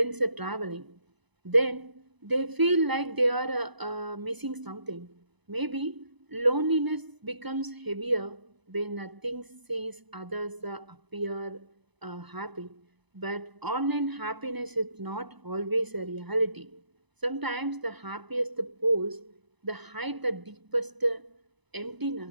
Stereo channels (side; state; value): left; late; 1.0 ms